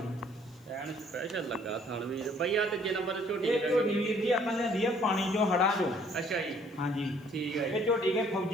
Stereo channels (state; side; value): noise; left; hiss, 30 dB below the sound